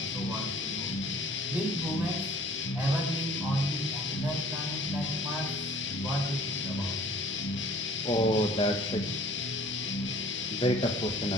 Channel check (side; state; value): both; normal; correlation 0.51